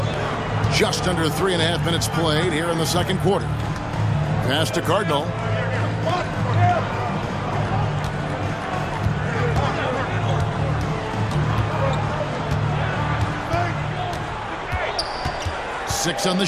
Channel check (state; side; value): identical; both; correlation 1.00